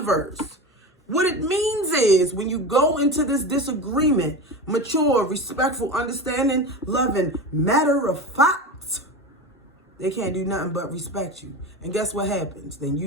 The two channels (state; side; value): normal; both; correlation 0.26